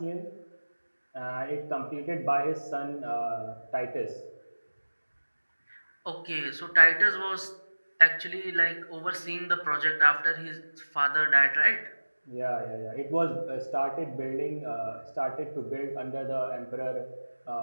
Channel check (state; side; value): inverted; both; correlation -1.00